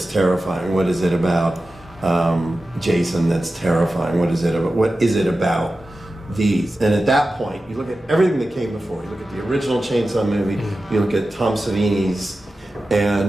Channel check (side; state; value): both; normal; correlation 0.94